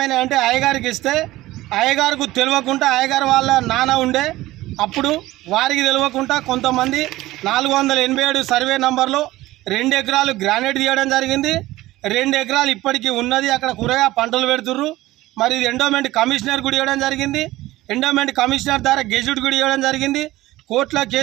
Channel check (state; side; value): quieter; left; 17.2 dB